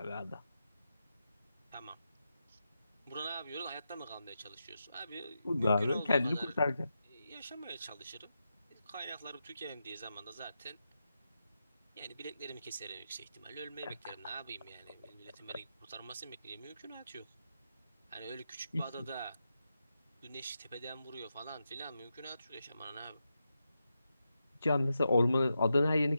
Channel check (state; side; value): inverted; both; correlation -0.87